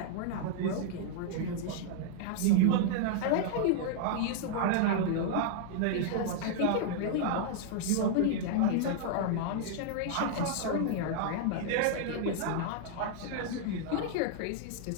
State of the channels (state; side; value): different; both; correlation 0.00